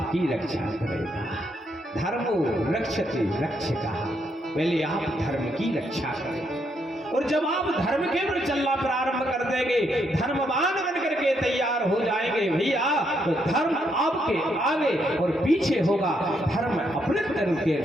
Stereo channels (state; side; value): normal; both; correlation 0.76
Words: रक्षा करेगा। धर्मो रक्षते रक्षकः, पहले आप धर्म की रक्षा करें। और जब आप धर्म के ऊपर चलना प्रारंभ कर देंगे, धर्मवान बन करके तैयार हो जाएंगे भैया, तो धर्म आपके आगे और पीछे होगा। धर्म अपने धर्म के